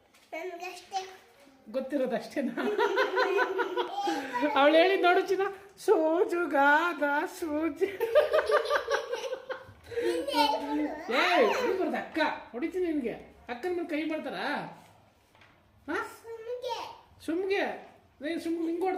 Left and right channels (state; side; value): identical; both; correlation 1.00